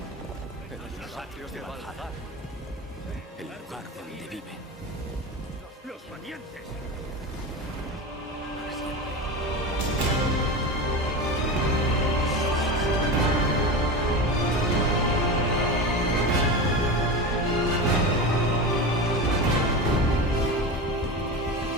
Los atrios de Valhalla, el lugar donde viven. ¡Los valientes!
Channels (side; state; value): both; normal; correlation 0.24